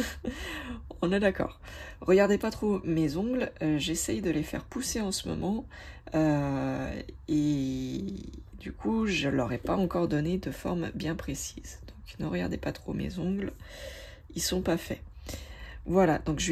On est d'accord. Regardez pas trop mes ongles, j'essaye de les faire pousser en ce moment et du coup je leur ai pas encore donné de forme bien précise. Donc ne regardez pas trop mes ongles, ils sont pas faits. Voilà, donc je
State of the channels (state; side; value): identical; both; correlation 1.00